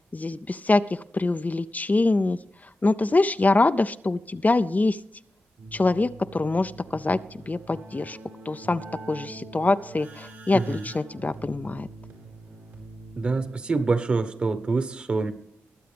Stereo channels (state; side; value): normal; both; correlation 0.92